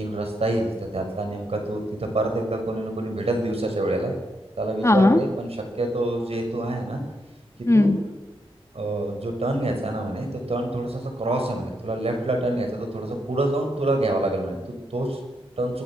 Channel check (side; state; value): both; normal; correlation 0.80